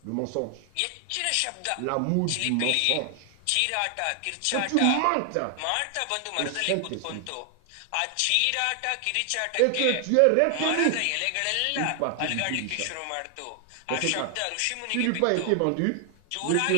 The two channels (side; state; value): both; different; correlation 0.00